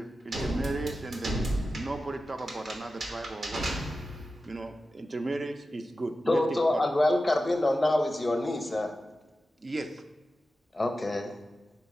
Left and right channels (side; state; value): both; normal; correlation 0.93